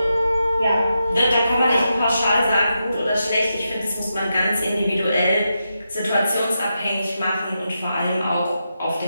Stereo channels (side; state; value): both; inverted; correlation -0.87